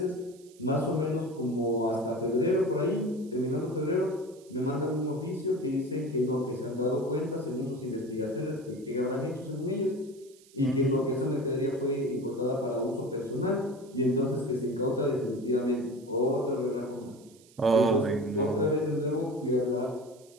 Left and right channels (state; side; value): noise; right; hiss, 26 dB below the sound